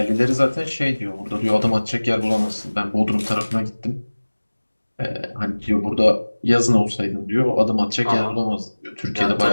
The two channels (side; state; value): both; inverted; correlation -1.00